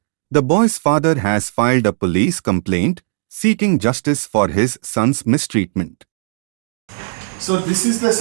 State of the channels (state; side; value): silent; left; 68 dB below the other